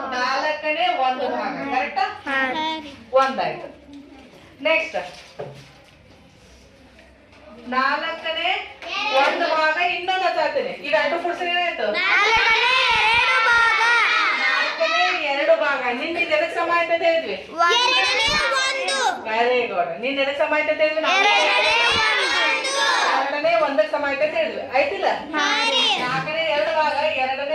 ನಾಲ್ಕನೇ ಒಂದು ಭಾಗ. ಕರೆಕ್ಟಾ? ಒಂದಾಯ್ತು. ನೆಕ್ಸ್ಟ್ ನಾಲ್ಕನೇ ಒಂದು ಭಾಗ ಇನ್ನೊಂದು ಹಚ್ಚಾತೀನಿ. ಈಗ ಎರಡು ಕೂಡಿಸಿದ್ರೆ ಏನಾಯ್ತು? ನಾಲ್ಕನೇ ಎರಡು ಭಾಗ. ನಿನ್ನ ಎದಕ್ ಸಮ ಆಯ್ತು ಅಂತ ಹೇಳಿದ್ವಿ? Very good. ನಿನ್ನ ಎದಕ್ ಸಮ ಆಯ್ತು ಅಂತ ಹೇಳಿದ್ವಿ? ಎರಡನೇ ಒಂದಕ್ಕೆ ಸಮ ಆಯ್ತು ಅಂತ ಹೇಳಿದ್ವಿ. ಆಯ್ತಿಲ್ಲ? ನಾಲ್ಕನೇ ಎರಡು ಭಾಗ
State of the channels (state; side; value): identical; both; correlation 1.00